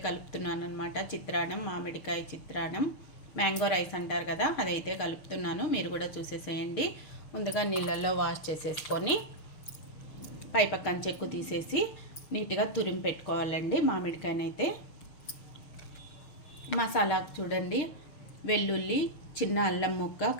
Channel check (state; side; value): late; right; 6.6 ms